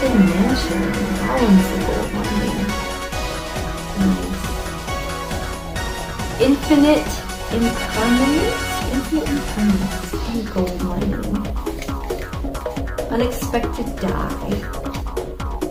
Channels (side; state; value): both; identical; correlation 1.00